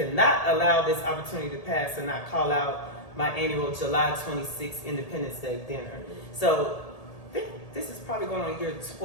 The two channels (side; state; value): right; late; 1.8 ms